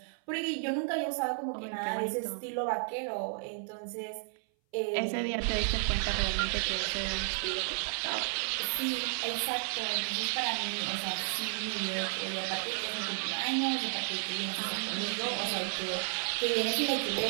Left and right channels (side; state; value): left; silent; 56 dB below the other